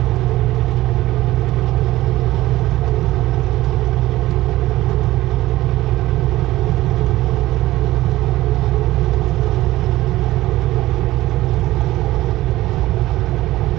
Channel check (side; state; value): left; quieter; 16.8 dB